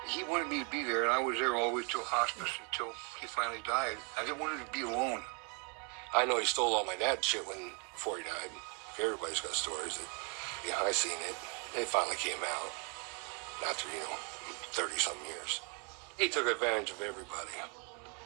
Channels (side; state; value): left; quieter; 36.1 dB